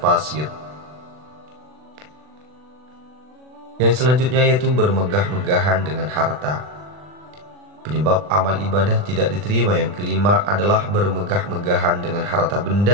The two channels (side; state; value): left; late; 40 ms